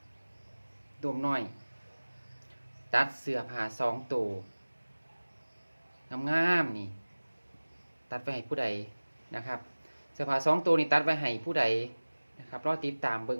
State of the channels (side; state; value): both; inverted; correlation -1.00